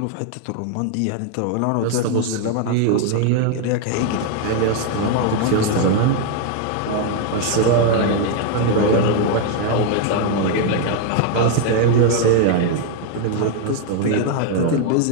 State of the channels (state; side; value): different; both; correlation 0.01